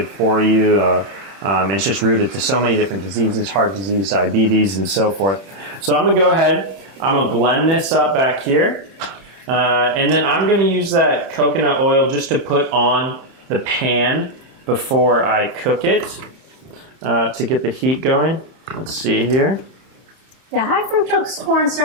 for you. It's just rooted to so many different diseases, heart disease, diabetes, and so forth. So I'm gonna go ahead, I'm gonna blend this up back here. And then I'm gonna use that coconut oil just to put on the pan before I cook it to get the heat going. Let's see here. Yeah, high fructose corn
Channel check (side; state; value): left; late; 31 ms